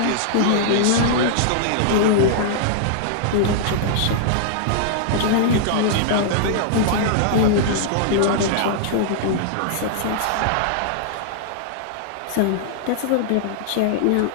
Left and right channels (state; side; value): different; both; correlation -0.01